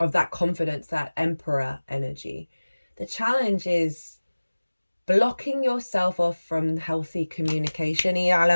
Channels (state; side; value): inverted; both; correlation -1.00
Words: that confidence, that Emperor energy, the challenge is blocking yourself off from healthy communication.